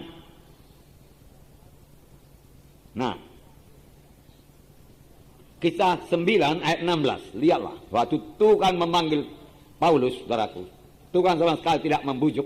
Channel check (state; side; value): identical; both; correlation 1.00